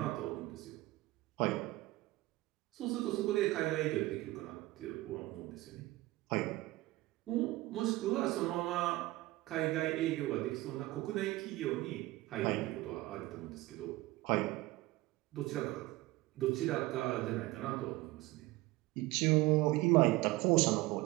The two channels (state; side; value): quieter; left; 19.0 dB